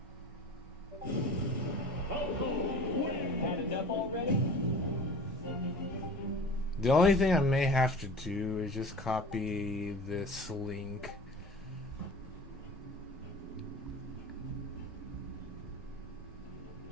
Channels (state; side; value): normal; both; correlation 0.40